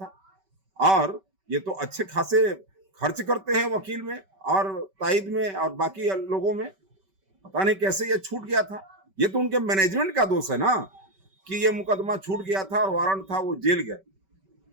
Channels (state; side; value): late; left; 5.2 ms